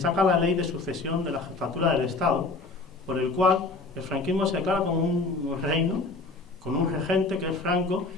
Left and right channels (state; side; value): quieter; right; 3.5 dB